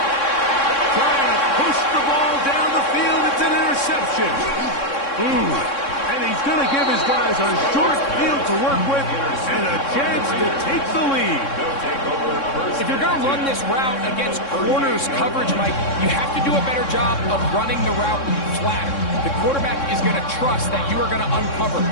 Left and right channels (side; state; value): right; late; 3.6 ms